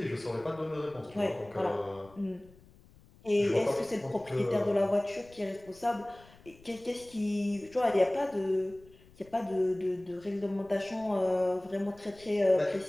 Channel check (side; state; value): left; noise; rumble, 25 dB below the sound